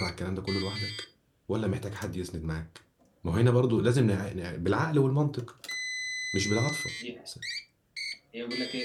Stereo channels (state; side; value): identical; both; correlation 1.00